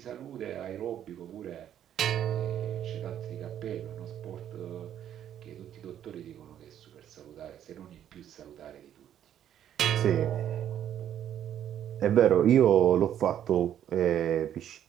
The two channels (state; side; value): quieter; left; 10.4 dB